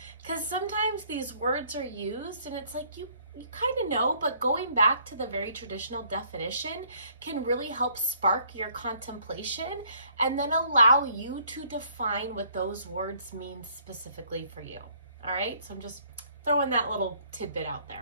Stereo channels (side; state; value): both; inverted; correlation -0.63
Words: because sometimes these words are used and it's like you kind of know, but going back to the very traditional definition can really help spark your contemplation and then allow you to define what those words mean specifically for you. All right, so I'm just throwing that little tidbit out